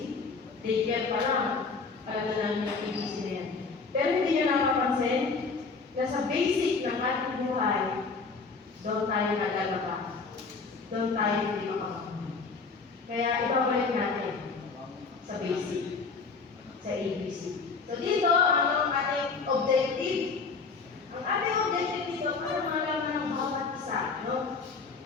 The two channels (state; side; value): quieter; right; 4.6 dB